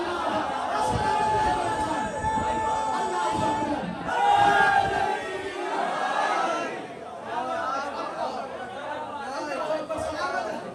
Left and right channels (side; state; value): both; identical; correlation 1.00